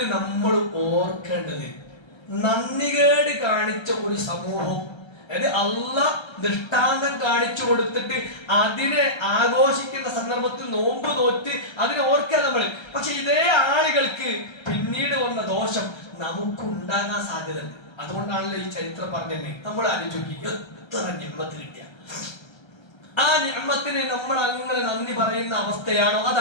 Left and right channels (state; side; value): late; right; 1.3 ms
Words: നമ്മൾ ഓർക്കേണ്ടത്, നന്ദികേട് കാണിച്ച ഒരു സമൂഹം, അതായത് അള്ളാഹ് ദൃഷ്ടാന്തം കാണിച്ചു കൊടുത്തിട്ട് അതിനെ ആഘോഷിക്കുന്ന സന്ദർഭത്തിൽ നോമ്പ് നോറ്റ് അതിനെ ഓർക്കുക നമ്മൾ. പക്ഷെ ഇതേ ആളുകൾക്ക് പിന്നീട് വന്ന ദോഷം നമുക്കുണ്ടാകാൻ സാധ്യതയുണ്ട്. അതുകൊണ്ടാണല്ലോ ഈ ചരിത്രം പറഞ്ഞത്. നമ്മൾ ആലോചിക്കി എത്ര നിഅ്മത്ത് കിട്ടിയ ആ നിഅ്മത്തിന് നമ്മൾ അങ്ങനെ നന്ദി പറയുന്ന അവസ്ഥയാണോ?